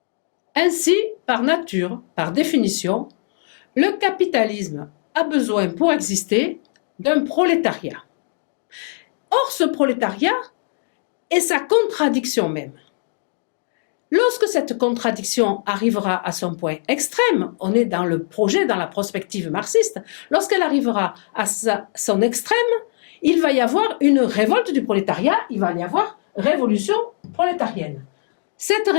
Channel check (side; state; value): right; silent; digital silence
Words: Ainsi, par nature, par définition, le capitalisme a besoin pour exister d'un prolétariat. Or, ce prolétariat est sa contradiction même. Lorsque cette contradiction arrivera à son point extrême, on est dans le projet, dans la prospective marxiste, lorsqu'elle arrivera à son extrême, il va y avoir une révolte du prolétariat, il va y avoir révolution prolétarienne. Cette